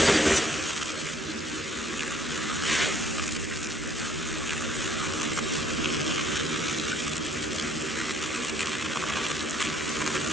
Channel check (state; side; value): normal; both; correlation 0.63